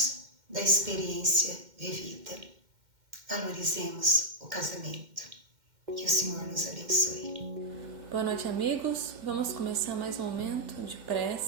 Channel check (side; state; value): left; late; 2.1 ms